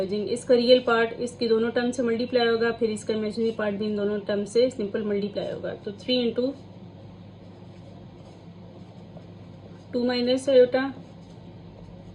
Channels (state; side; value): identical; both; correlation 1.00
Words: जाएंगे। इसका रियल पार्ट इसकी दोनों टर्म से मल्टीप्लाई होगा, फिर इसका इमेजिनरी पार्ट भी इन दोनों टर्म से सिंपल मल्टीप्लाई होगा। तो 3 into 2 minus iota